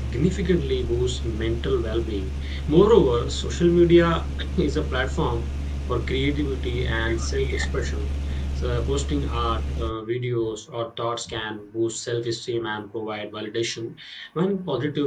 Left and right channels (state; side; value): identical; both; correlation 1.00